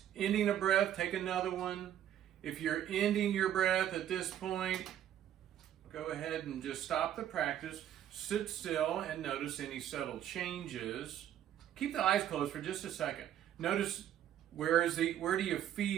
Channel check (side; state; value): left; quieter; 10.9 dB